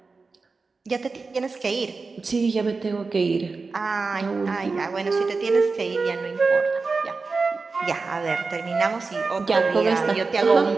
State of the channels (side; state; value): left; quieter; 4.2 dB